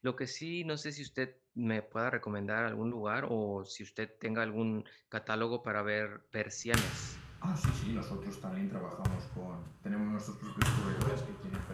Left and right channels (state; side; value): identical; both; correlation 1.00